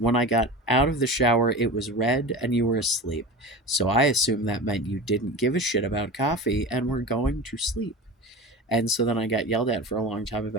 I got out of the shower, it was read and you were asleep. So I assumed that meant you didn't give a shit about coffee and were going to sleep. And so then I got yelled at for a long time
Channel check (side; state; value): both; normal; correlation 0.30